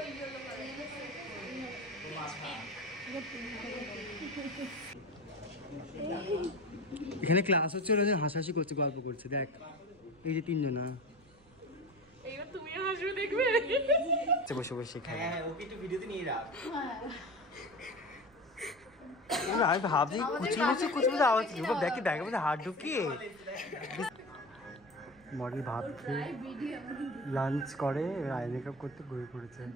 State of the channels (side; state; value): right; noise; rumble, 27 dB below the sound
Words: এখানে ক্লাস হচ্ছে, ওরা হাসাহাসি করছে, গল্প করছে। দেখ এই যে তিনজনা, এইবার তুমিও হাসবে, দেখবে বসে বসে। হ্যাঁ, ওকে একটু ভিডিওতে নিয়ে রাখ। আমি ভাবছি কুচকুচি কুচকুচি আওয়াজ কি, দেখি ব্যাগের মধ্যে হাত ঢুকিয়ে মডেল ভাবছে লাঞ্চ করে, আই মেকআপ করতে ঘুরে পড়েছে।